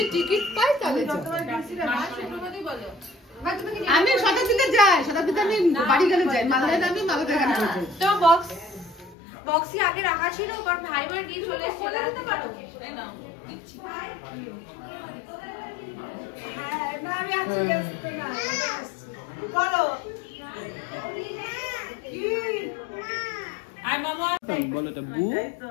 টিকিট পাই তাহলে আমি শতাব্দীতে যাই, শতাব্দীতে আমি বাড়ি গেলে যাই, মালদায় আমি মালদায় গাড়ি করে যাই। তো বক্স কি আগে রাখা ছিল কারণ ভাই বোন দিয়ে চলে এসে বলে দিতে পারো না আমি আছি না বলো কি আই মামা বলো এটা বু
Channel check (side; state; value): right; drops out; at 9.2 s